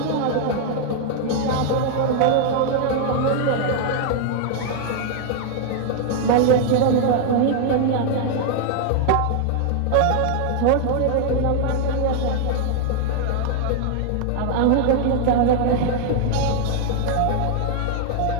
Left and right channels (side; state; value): both; different; correlation 0.00